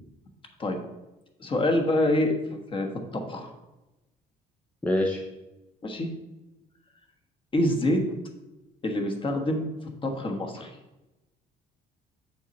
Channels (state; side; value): normal; both; correlation 0.67